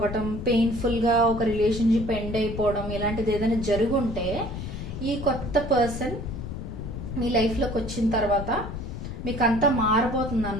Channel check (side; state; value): left; noise; rumble, 7 dB below the sound